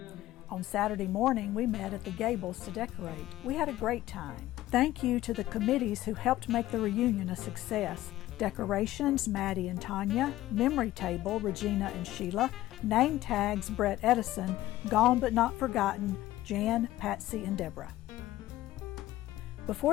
On Saturday morning, we met at the Gables to decorate. We had a great time. Thank you to the committees who helped make the reunion a success. Decorations, Maddie and Tanya. Memory table, Regina and Sheila. Name tags, Brett Edison. Gone but not forgotten, Jan, Patsy, and Deborah.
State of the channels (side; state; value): right; quieter; 15.4 dB